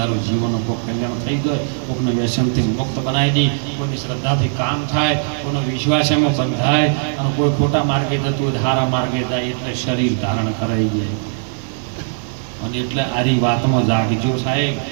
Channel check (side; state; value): left; silent; digital silence